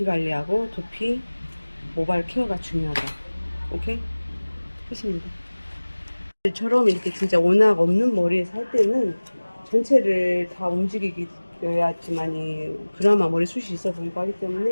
관리하고 두피 모발 케어가 중요하다. 오케이? 끝입니다. 저럼 이렇게 진짜 워낙 없는 머리에서 할 때는 전체를 다 움직이어야지만이 그나마 머리숱이 있어 보이고 하기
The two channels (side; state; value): both; inverted; correlation -1.00